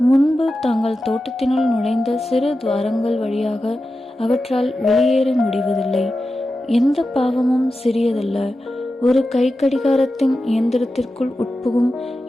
முன்பு தாங்கள் தோட்டத்தினுள் நுழைந்த சிறு துவாரங்கள் வழியாக அவற்றால் வெளியேற முடிவதில்லை. எந்த பாவமும் சிறியதல்ல. ஒரு கை கடிகாரத்தின் இயந்திரத்திற்குள் உட்புகும்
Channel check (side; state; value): both; normal; correlation 0.92